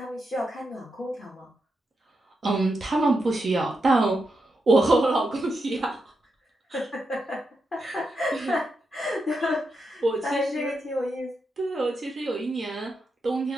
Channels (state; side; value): normal; both; correlation 0.85